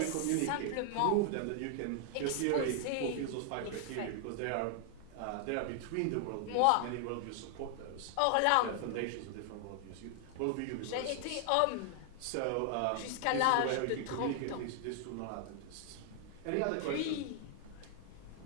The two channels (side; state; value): both; different; correlation 0.00